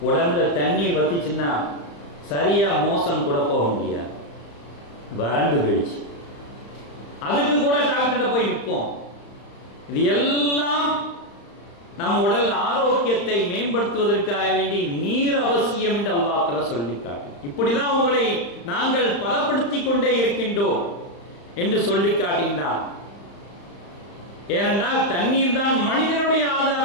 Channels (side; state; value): right; late; 35 ms